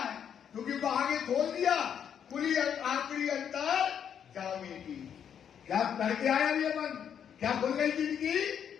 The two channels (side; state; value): right; quieter; 8.4 dB